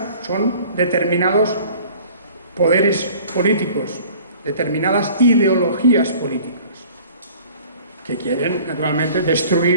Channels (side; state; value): both; inverted; correlation -0.49